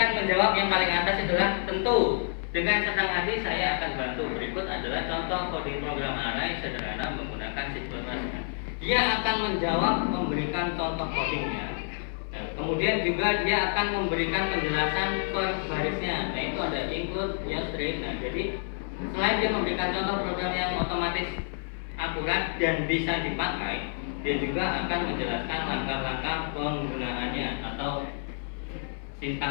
menjawab yang paling atas adalah tentu. Dengan senang hati saya akan bantu. Berikut adalah contoh coding program array sederhana menggunakan C++. Dia akan menjawab, memberikan contoh codingnya. Nah, kemudian juga dia akan memberikan penjelasan per barisnya. Nah, itu ada include, string. Nah, jadi selain dia memberikan contoh program yang otomatis akurat dan bisa dipakai, dia juga akan menjelaskan langkah-langkah penggunaannya atau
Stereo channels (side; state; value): right; silent; 59 dB below the other